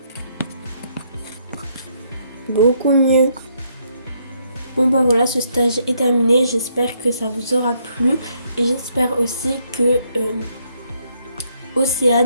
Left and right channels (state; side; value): inverted; both; correlation -0.72